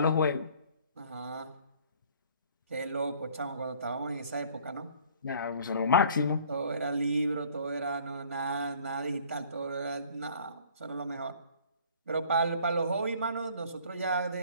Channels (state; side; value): inverted; both; correlation -0.54